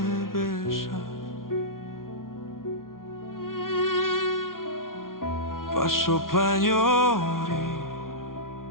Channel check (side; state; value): right; late; 0.91 ms